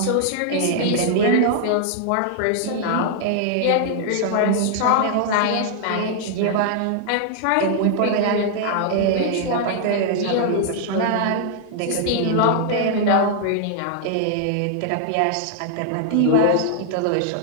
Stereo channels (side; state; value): both; different; correlation -0.01